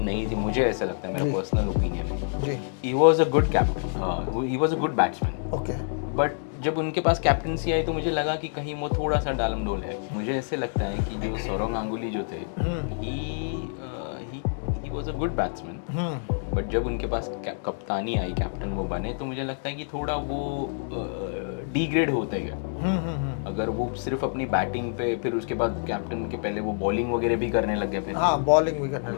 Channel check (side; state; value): right; silent; digital silence